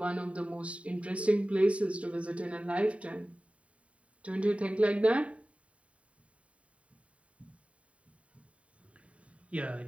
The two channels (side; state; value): left; late; 0.065 ms